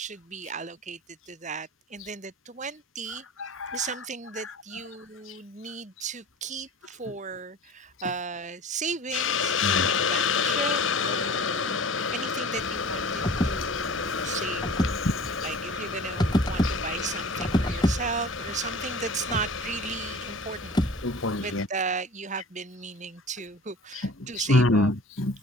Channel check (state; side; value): normal; both; correlation 0.42